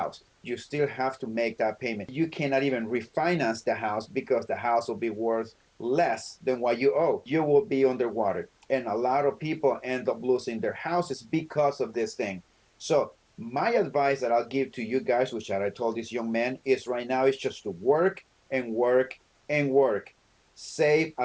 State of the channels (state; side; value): identical; both; correlation 1.00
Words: You still have to make that payment. You cannot even refinance the house because the house will be worth less than what you owe. You will be underwater. And a lot of people end up losing their houses because of this thing. So my advice that I'll give to you guys, which I told this young man, is right now is just to work and work and work. Save